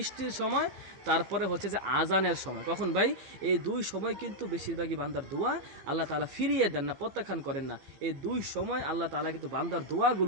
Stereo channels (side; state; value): left; late; 15 ms